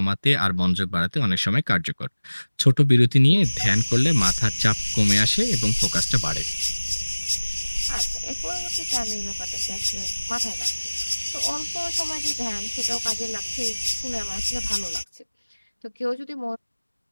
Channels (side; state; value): both; inverted; correlation -1.00